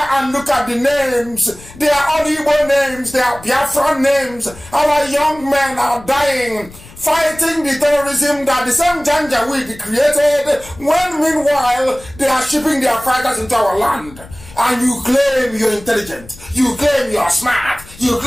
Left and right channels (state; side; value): noise; left; rumble, 20 dB below the sound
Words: and look at the names. They are all Igbo names, they are Biafra names. Our young men are dying, fighting the terrorism that the same Janjaweed created, when meanwhile they are shipping their fighters into our land. And you claim you're intelligent, you claim you're smart, you